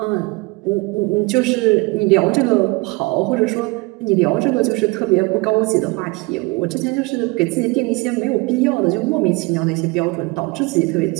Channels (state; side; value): quieter; left; 25.7 dB